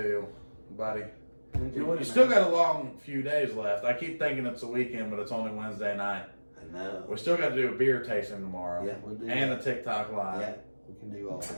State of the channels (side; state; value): both; inverted; correlation -1.00